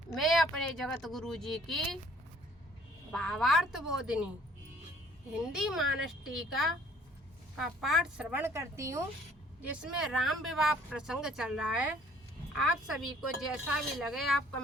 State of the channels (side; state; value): both; normal; correlation 0.57